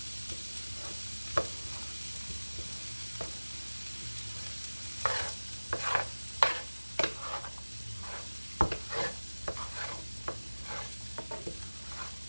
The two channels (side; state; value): both; inverted; correlation -1.00